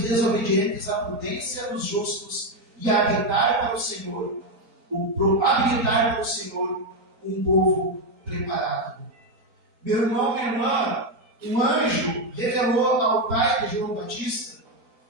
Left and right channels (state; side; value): late; left; 4.4 ms